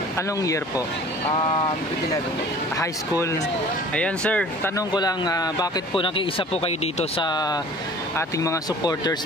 Anong year po? Grade 11 po. High school. Ayan sir, tanong ko lang, bakit po nakiisa po kayo dito sa ating mga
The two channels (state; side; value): normal; both; correlation 0.47